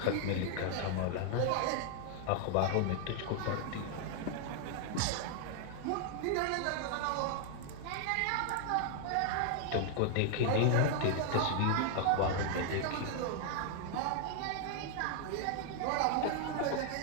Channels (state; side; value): different; both; correlation 0.00